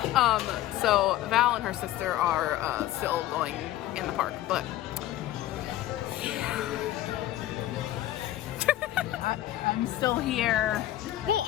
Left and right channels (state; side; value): quieter; right; 14.1 dB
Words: So Val and her sister are still going in the park, but I'm still here. well,